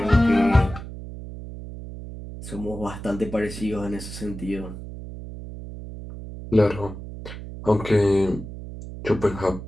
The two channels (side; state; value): right; noise; hum, 11 dB below the sound